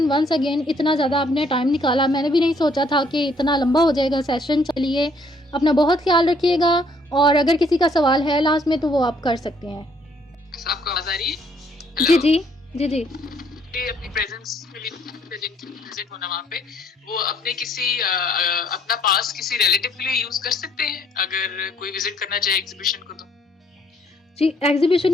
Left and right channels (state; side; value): normal; both; correlation 0.65